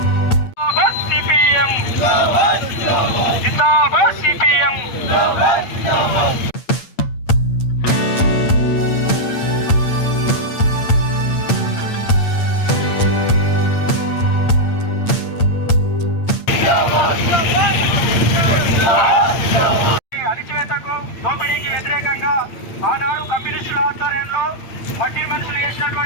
జిందాబాద్ సిపిఎం. అణచివేతకు దోపిడీకి వ్యతిరేకంగా ఆనాడు కమ్యూనిస్టుల ఆధ్వర్యంలో మట్టి మనుషులు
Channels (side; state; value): right; late; 8.7 ms